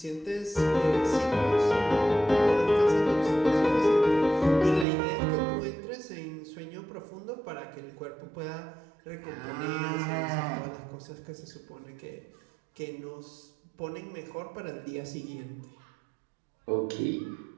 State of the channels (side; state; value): left; drops out; at 4.9 s